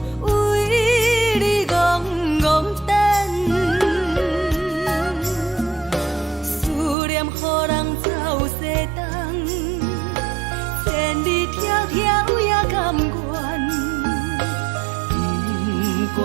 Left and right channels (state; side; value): drops out; left; at 7.0 s